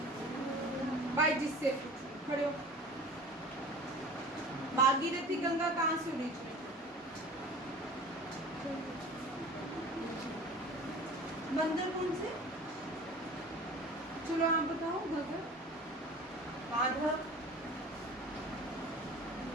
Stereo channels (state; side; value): normal; both; correlation 0.41